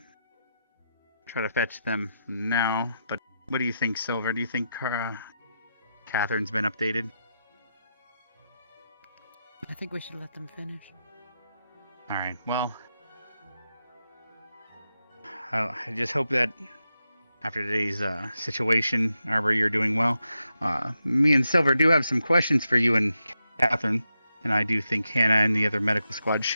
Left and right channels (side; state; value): both; inverted; correlation -0.86